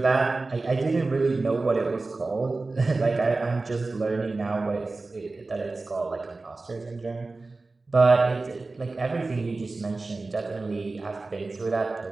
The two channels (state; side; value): quieter; left; 3.5 dB